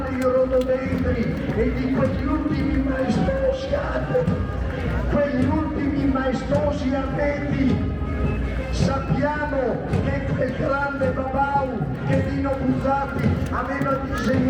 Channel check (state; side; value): identical; both; correlation 1.00